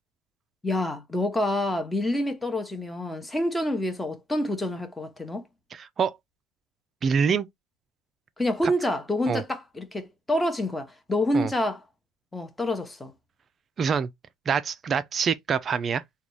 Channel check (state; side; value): normal; both; correlation 0.80